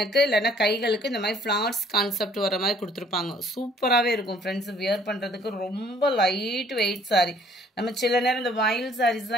இல்லைன்னா கைகளுக்கு இந்த மாதிரி ஃப்ளார்ஸ் கான்செப்ட் வர மாதிரி கொடுத்துருப்பாங்க. சூப்பராகவே இருக்கும் ஃப்ரெண்ட்ஸ். வியர் பண்ணுறதுக்கு ரொம்ப லைட் வெயிட் சாரி. நம்ம சில நேரம் இந்த வாயில்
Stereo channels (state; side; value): normal; both; correlation 0.59